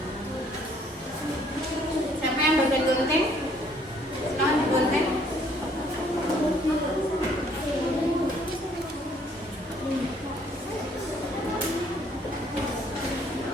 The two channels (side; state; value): both; normal; correlation 0.63